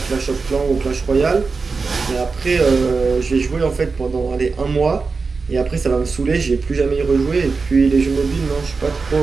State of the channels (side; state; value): left; quieter; 4.5 dB